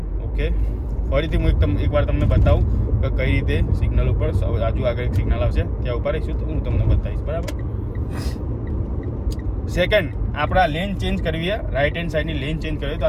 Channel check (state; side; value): identical; both; correlation 1.00